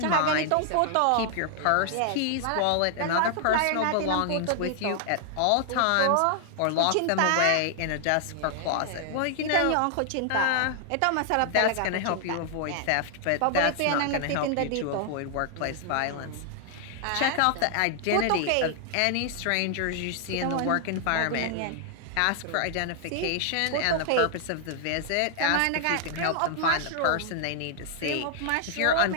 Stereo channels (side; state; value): both; different; correlation 0.00